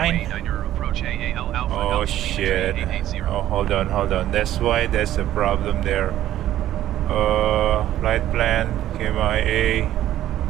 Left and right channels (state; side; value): quieter; left; 12.9 dB